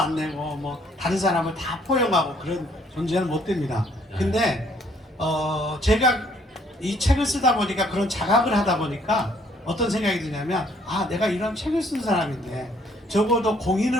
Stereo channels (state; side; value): normal; both; correlation 0.64